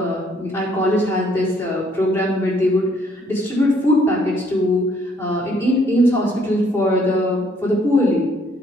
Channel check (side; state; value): both; normal; correlation 0.65